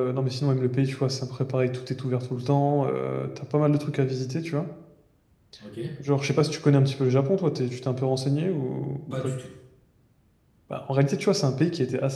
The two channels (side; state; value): both; identical; correlation 1.00